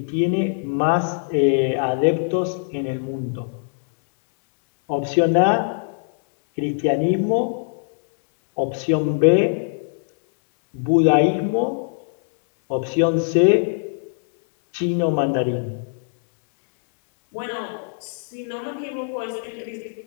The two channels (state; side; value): silent; right; 63 dB below the other